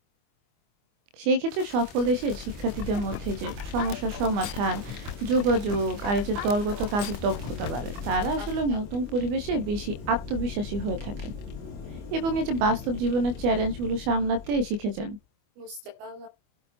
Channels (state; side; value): late; left; 25 ms